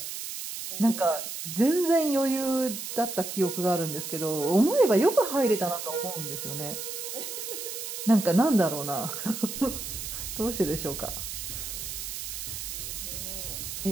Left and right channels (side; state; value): right; noise; hiss, 6 dB below the sound